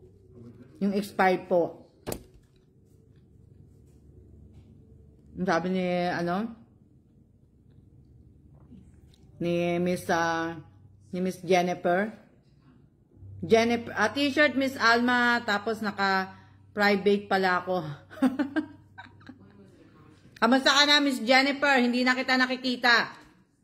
Yung expired po. Sabi ni Miss Jennifer. T-shirt Miss Alma, tapos naka-private pala ako. Kamusta ka na, Miss Jennifer? Hindi na kita nakikita.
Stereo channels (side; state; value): both; identical; correlation 1.00